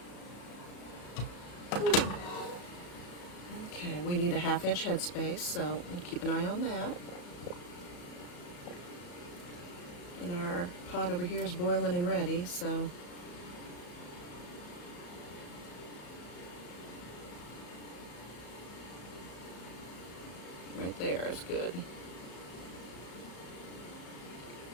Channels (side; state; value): right; late; 34 ms